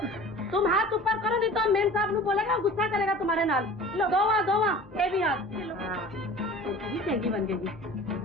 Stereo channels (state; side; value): normal; both; correlation 0.41